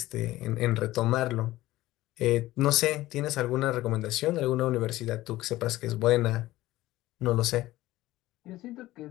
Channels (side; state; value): right; quieter; 16.7 dB